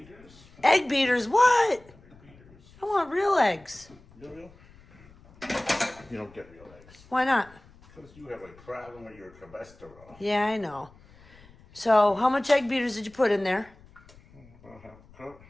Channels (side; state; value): left; noise; rumble, 25 dB below the sound